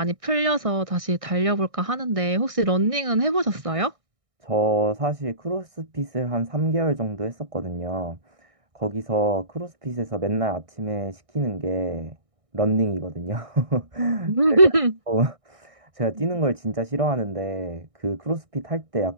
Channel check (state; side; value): late; left; 1.6 ms